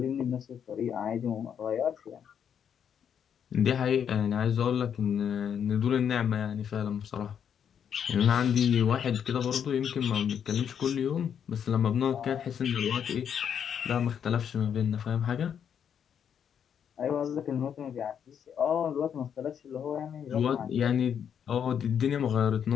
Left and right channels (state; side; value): quieter; right; 8.2 dB